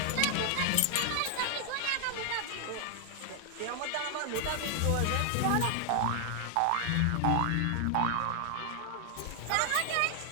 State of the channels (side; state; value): both; different; correlation 0.00